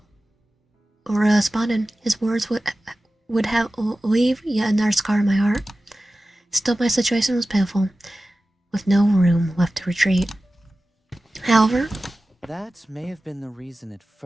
Uria responded, his words would have leave yet another scar in my heart. Still, my situation was pitiful, with no room left to retreat. However, that may have been the reason at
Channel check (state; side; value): normal; both; correlation 0.95